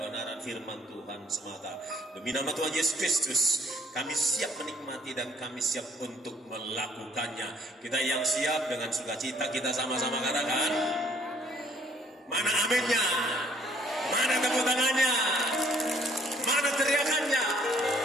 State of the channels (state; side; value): normal; both; correlation 0.61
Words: firman Tuhan semata. Demi nama Tuhan Yesus Kristus, kami siap menikmati dan kami siap untuk melakukannya. Kita yang siap dengan sukacita, kita sama-sama katakan, mana aminnya? Mana tepuk tangannya? Mana teriakannya?